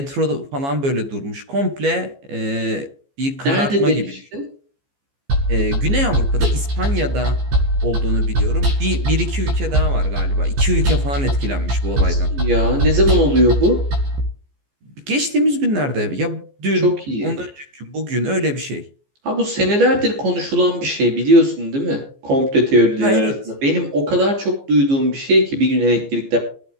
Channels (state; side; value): late; left; 15 ms